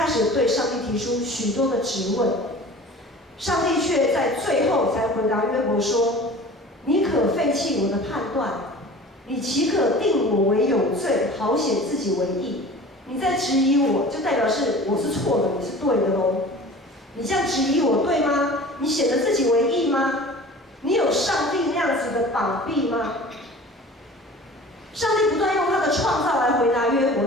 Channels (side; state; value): both; normal; correlation 0.41